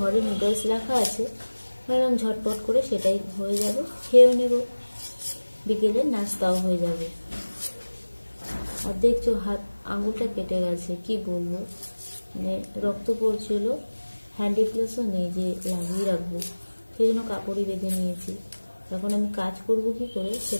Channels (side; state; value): both; inverted; correlation -1.00